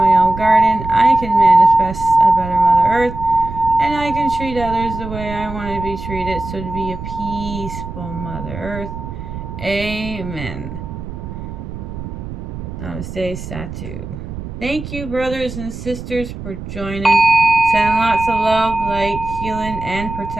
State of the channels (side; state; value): right; noise; rumble, 9 dB below the sound